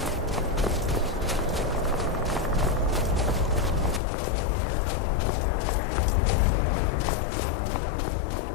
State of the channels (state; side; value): drops out; right; at 4.0 s